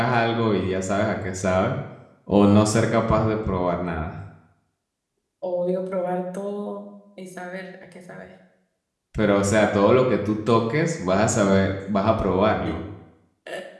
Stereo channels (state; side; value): identical; both; correlation 1.00